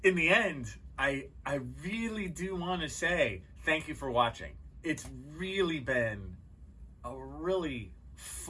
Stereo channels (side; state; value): both; identical; correlation 1.00